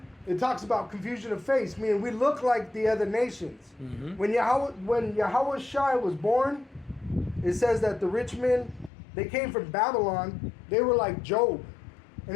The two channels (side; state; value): right; drops out; at 8.9 s